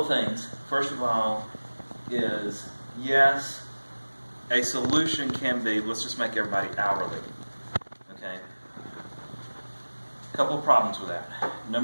of things. First of all is, yes, a solution can be, let's just make everybody hourly. Okay? A couple of problems with that.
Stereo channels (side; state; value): both; inverted; correlation -1.00